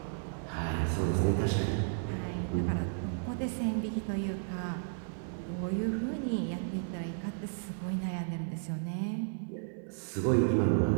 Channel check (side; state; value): left; silent; 56 dB below the other